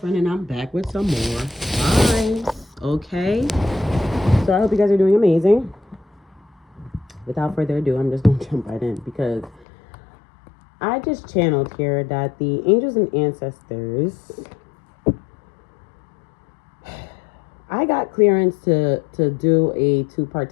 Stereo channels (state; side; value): drops out; right; at 9.7 s